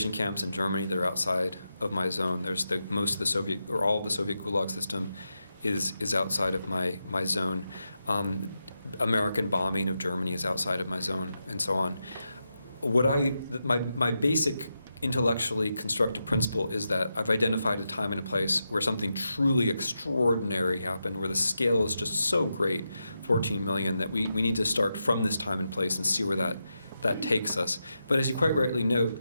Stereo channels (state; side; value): inverted; both; correlation -0.87